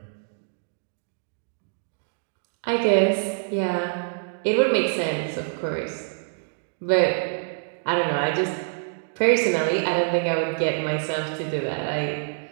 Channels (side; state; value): left; silent; digital silence